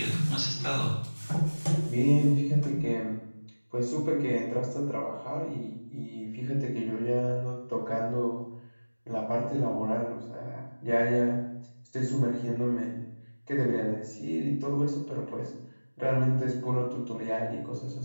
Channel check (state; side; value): inverted; both; correlation -1.00